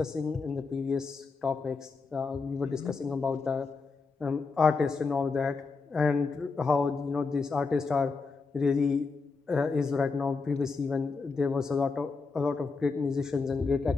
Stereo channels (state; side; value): quieter; right; 4.4 dB